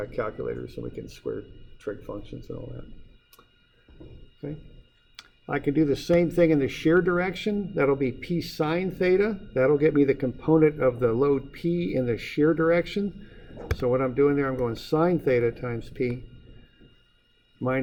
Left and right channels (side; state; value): both; identical; correlation 1.00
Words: calculators and we can square trig functions and all that. Okay. I can do the same thing in the shear direction. That'll be P sine theta. That'll get me the component of the load P in the shear direction. So what I'm doing there, I'm going sine theta times P